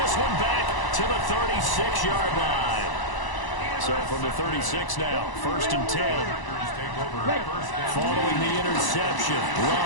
one back to the 36-yard line. So from the 36 now, 1st and 10. Following the interception,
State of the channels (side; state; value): right; late; 1.0 ms